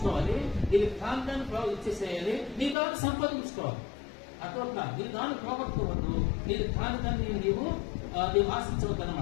నీకు కాంతాన్ని ఇచ్చేసేయాలి, నీ దాన్ని సంపాదించుకోవాలి. అట్లా నీ దాన్ని పోగొట్టుకోవద్దు, నీకు కాని దాన్ని నీవు ఆశించవద్దు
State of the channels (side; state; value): right; drops out; at 2.8 s